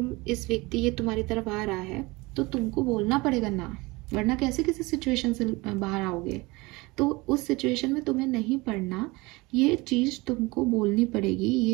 इस व्यक्ति ये तुम्हारी तरफ आ रहा है तो तुमको बोलना पड़ेगा ना, वरना कैसे किसी सिचुएशन से बाहर आओगे। तो उस सिचुएशन में तुम्हें नहीं पढ़ना, ये चीज तुमको बोलनी पड़ेगी,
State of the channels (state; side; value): quieter; left; 23.5 dB